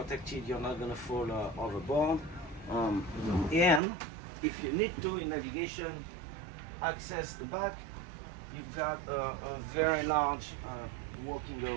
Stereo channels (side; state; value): left; drops out; at 3.8 s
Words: You're not going to fall overboard. And if you need to, in navigation, access the back, you've got a very large walking